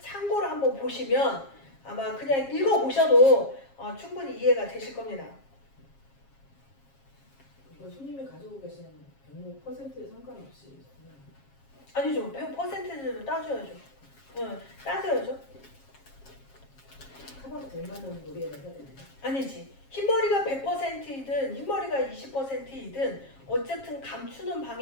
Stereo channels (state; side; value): late; right; 7.4 ms